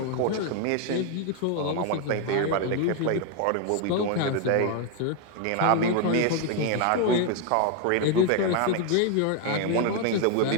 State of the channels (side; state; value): both; different; correlation 0.00